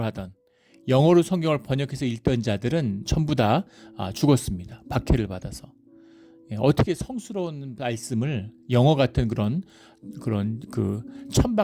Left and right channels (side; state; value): both; identical; correlation 1.00